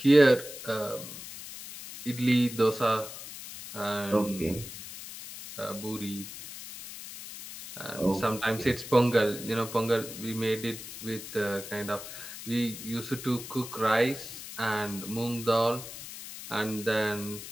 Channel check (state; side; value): noise; left; hiss, 11 dB below the sound